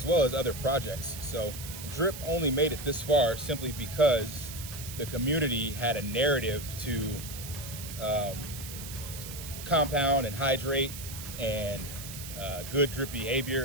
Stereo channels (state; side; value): noise; right; hiss, 10 dB below the sound